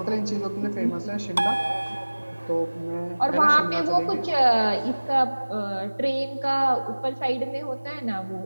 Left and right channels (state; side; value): inverted; both; correlation -1.00